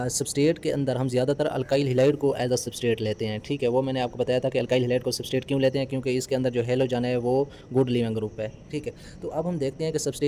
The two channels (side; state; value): both; identical; correlation 1.00